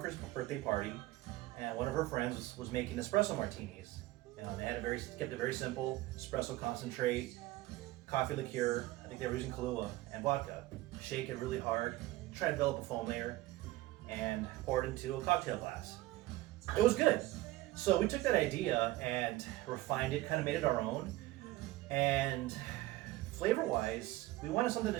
birthday party and one of her friends was making espresso martinis. They had kept it very simple, espresso concentrate, coffee liqueur, I think they were using Kahlua, and vodka. Shake it really hard, try to develop a foam layer, and pour it into a cocktail glass. It was good. So we took that idea and refined it, kind of made it our own. And flavor-wise, we wanted something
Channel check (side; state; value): left; quieter; 17.6 dB